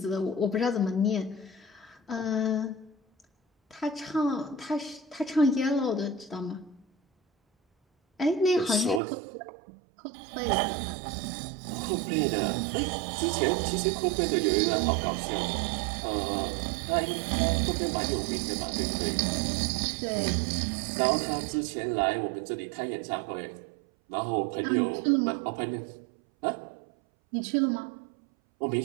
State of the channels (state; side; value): drops out; left; at 9.0 s